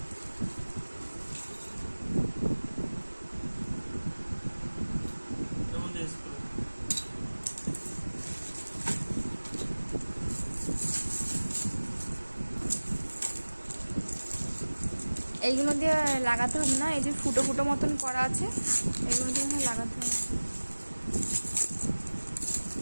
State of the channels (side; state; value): both; inverted; correlation -1.00